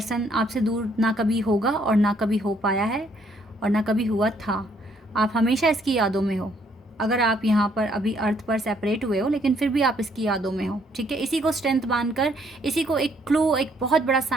आपसे दूर ना कभी होगा और ना कभी हो पाया है और ना कभी हुआ था। आप हमेशा इसकी यादों में हो। अगर आप यहाँ पर अभी अर्थ पर सेपरेट हुए हो, लेकिन फिर भी आप इसकी यादों में हो, ठीक है। इसी को स्ट्रेंथ मानकर, इसी को एक क्लू, एक बहुत बड़ा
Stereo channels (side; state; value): both; normal; correlation 0.67